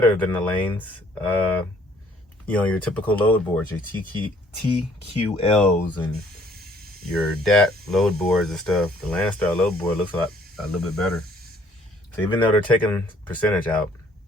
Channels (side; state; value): both; normal; correlation 0.62